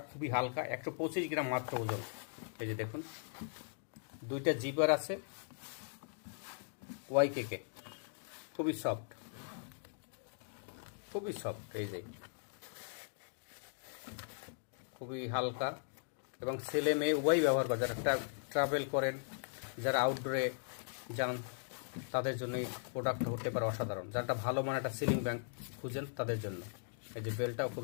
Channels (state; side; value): silent; right; digital silence